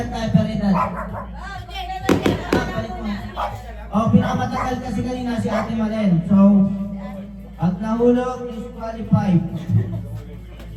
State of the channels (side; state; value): both; identical; correlation 1.00